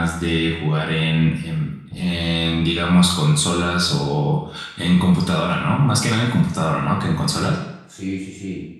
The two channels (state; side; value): identical; both; correlation 1.00